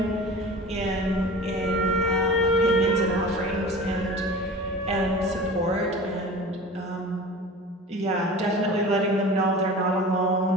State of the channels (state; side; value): normal; both; correlation 0.37